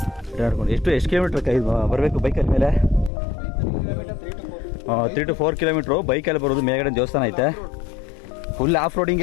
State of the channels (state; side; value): drops out; right; at 3.1 s